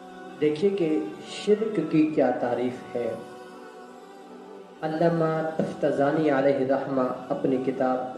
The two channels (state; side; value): identical; both; correlation 1.00